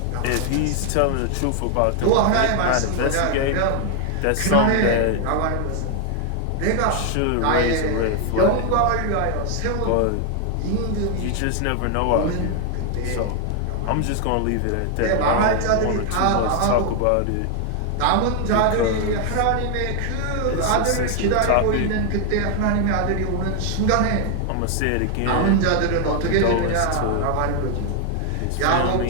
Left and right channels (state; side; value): different; both; correlation 0.00